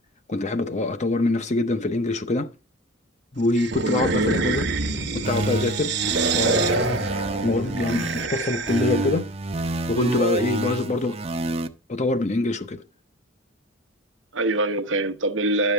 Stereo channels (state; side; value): normal; both; correlation 0.35